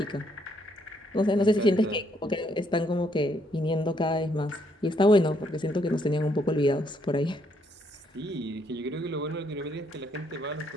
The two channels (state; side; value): normal; both; correlation 0.71